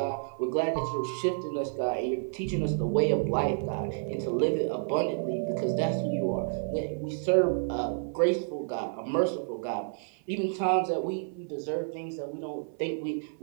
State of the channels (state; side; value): silent; left; 57 dB below the other